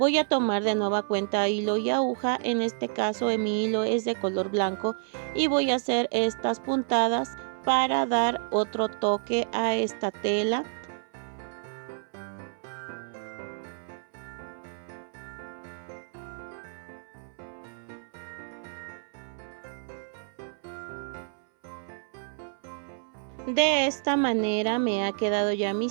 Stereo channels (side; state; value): left; silent; 58 dB below the other